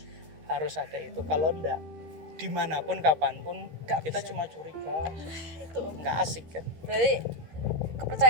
ada itu. Kalau enggak, dimanapun kapanpun Nggak kita bisa. cuma curiga, Itu nggak asik kan. berarti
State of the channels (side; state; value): left; late; 13 ms